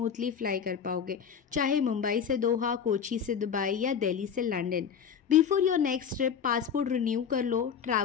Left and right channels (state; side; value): quieter; right; 7.4 dB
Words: फ्लाई कर पाओगे, चाहे मुंबई से दोहा, कोची से दुबई या दिल्ली से London. Before your next trip passport renew कर लो,